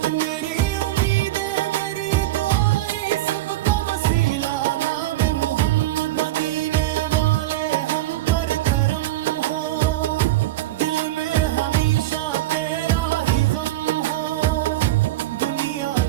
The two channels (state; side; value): quieter; left; 16.0 dB